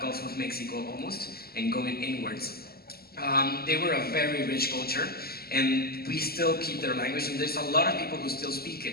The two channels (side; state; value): right; late; 0.45 ms